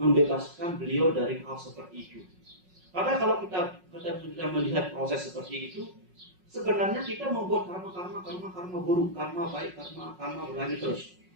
beliau dari hal seperti itu. Karena kalau kita melihat proses seperti itu, sebenarnya kita membuat karma buruk, karma baik, karma berlanjut terus.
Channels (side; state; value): left; late; 5.5 ms